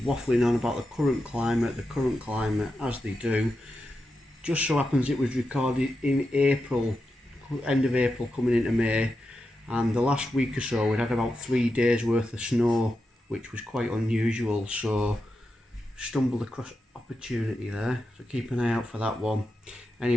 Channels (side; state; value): both; normal; correlation 0.89